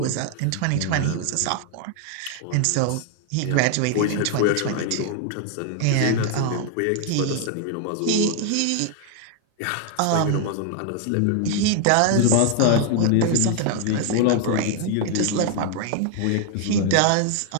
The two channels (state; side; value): different; both; correlation 0.00